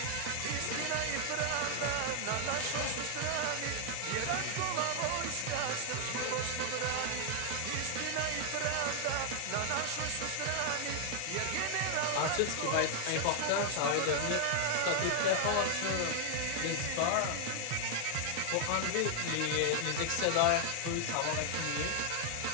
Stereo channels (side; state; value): both; different; correlation 0.00